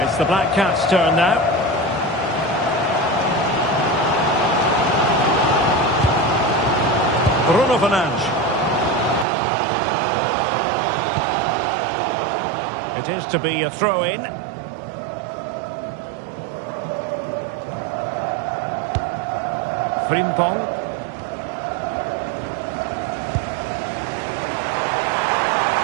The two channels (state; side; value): drops out; left; at 9.2 s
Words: the Black Cats' turn now. Bruno Fernandes. It is to be a throw-in. Frimpong.